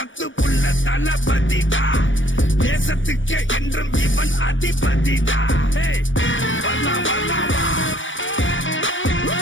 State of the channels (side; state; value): right; late; 0.56 ms